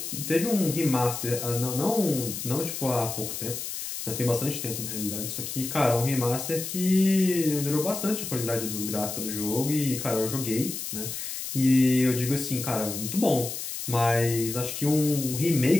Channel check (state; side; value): noise; left; hiss, 6 dB below the sound